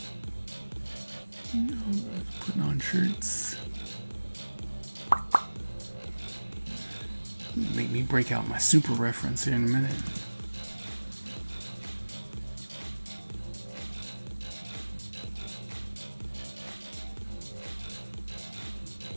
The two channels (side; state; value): both; inverted; correlation -1.00